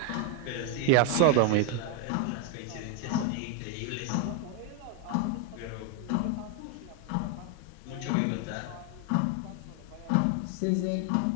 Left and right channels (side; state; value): both; different; correlation 0.01